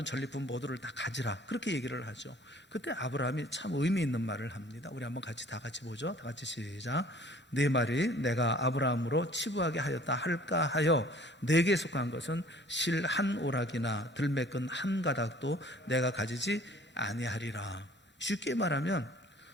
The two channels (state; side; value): normal; both; correlation 0.52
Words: 전리품 모두를 다 가지라 그렇게 얘기를 하죠. 그때 아브라함이 참 의미 있는 말을 합니다. 우리 한번 다 같이 보죠. 다 같이 시작. 네 말이 내가 아브라함으로 치부하게 하였다 할까 하여 내게 속한 것은 실 한 오락이나 들매끈 한 가닥도 내가 가지지 아니하리라. 쉽게 말하면